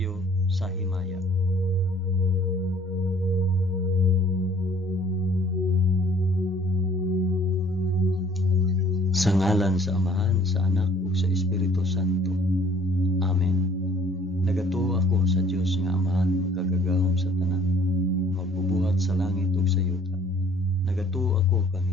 sa himaya. Sa ngalan sa Amahan, sa Anak, ug sa Espiritu Santo. Amen. Nagatuo ako sa Dios nga Amahan, magkagagahom sa tanan, magbubuhat sa langit ug sa yuta. Nagatuo ako kang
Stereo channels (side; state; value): both; normal; correlation 0.56